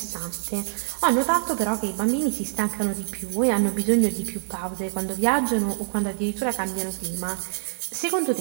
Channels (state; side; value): silent; left; digital silence